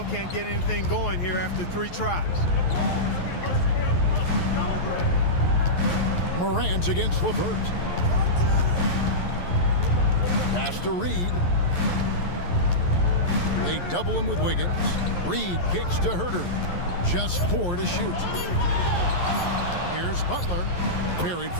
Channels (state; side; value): late; right; 11 ms